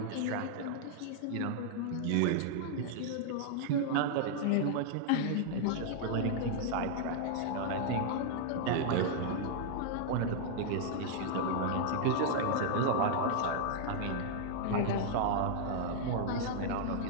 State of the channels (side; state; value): both; different; correlation -0.01